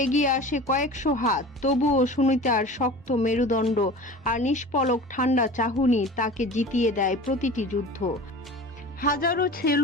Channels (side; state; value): both; normal; correlation 0.37